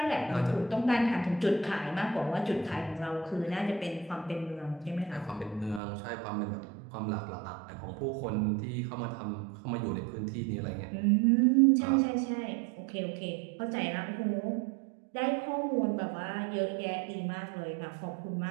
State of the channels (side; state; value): left; drops out; at 5.8 s